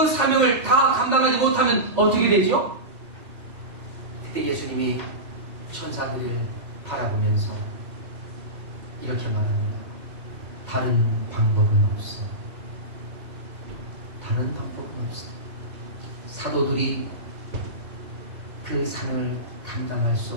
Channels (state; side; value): late; left; 2.0 ms